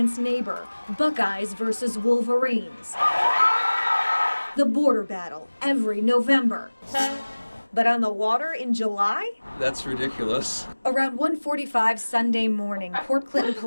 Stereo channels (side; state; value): both; inverted; correlation -1.00